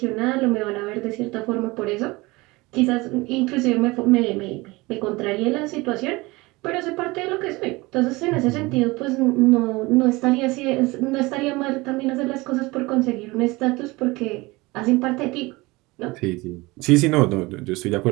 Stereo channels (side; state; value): left; quieter; 22.5 dB